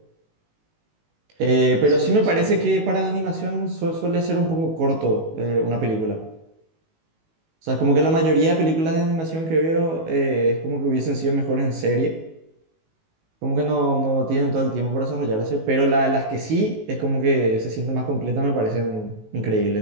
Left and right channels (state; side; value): late; left; 19 ms